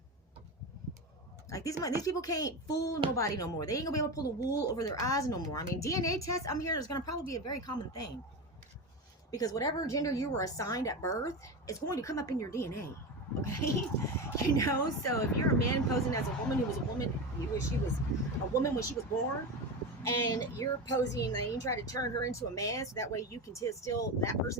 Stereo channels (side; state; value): both; normal; correlation 0.21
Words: Like, these people can't fool nobody no more. They ain't gonna be able to pull the wool over their eyes no more. I mean, DNA tests, I'm hearing, is gonna probably be a very common thing. Because whatever gender you were assigned at birth, it's going to come up in your DNA. Okay? You know, so if you're a man posing as a woman who was a woman, she was a woman when she was born, and you're posing and you try to turn her into a man so that way you can steal that